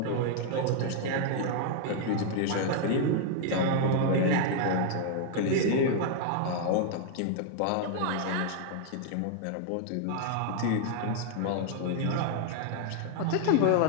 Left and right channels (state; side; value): different; both; correlation 0.00